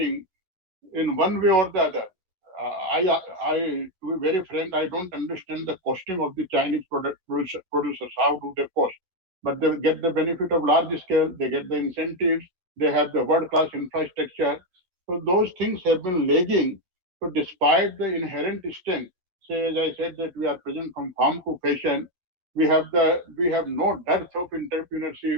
in one way or the other. To be very frank, I don't understand the costing of the Chinese producers. How do they cost? But they get the benefit of large scale, they get the incentives, they have the world-class infrastructure. So those things have been lagging. So despite the inherent strength, say as I said that we are present from farm to fashion, we have no dearth of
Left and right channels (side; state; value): left; late; 11 ms